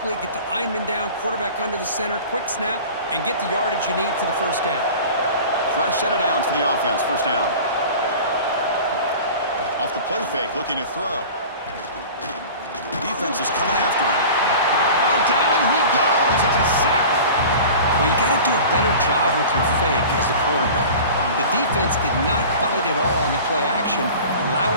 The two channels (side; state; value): both; inverted; correlation -0.38